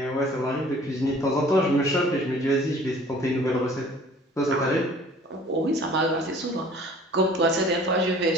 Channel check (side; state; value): both; normal; correlation 0.51